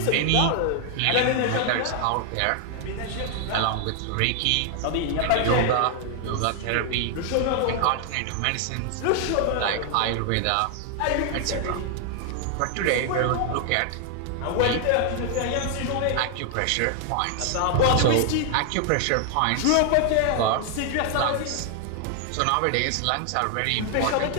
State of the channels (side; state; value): both; different; correlation 0.00